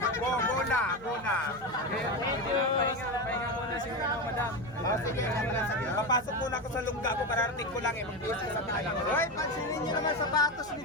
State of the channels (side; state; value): right; noise; hum, 22 dB below the sound